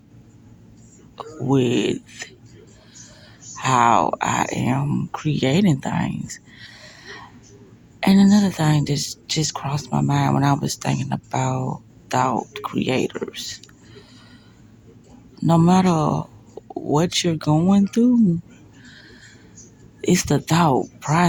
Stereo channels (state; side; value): identical; both; correlation 1.00